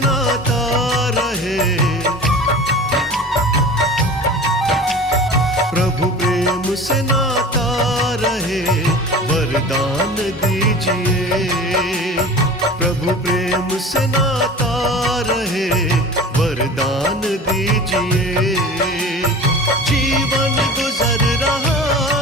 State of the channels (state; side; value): normal; both; correlation 0.37